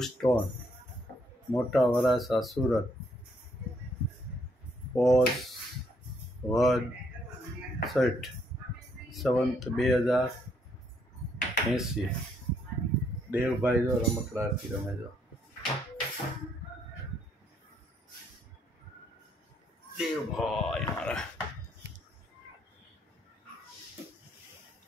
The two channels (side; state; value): both; normal; correlation 0.71